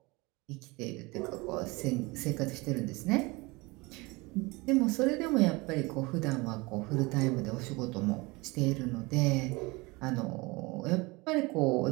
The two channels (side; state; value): left; quieter; 24.4 dB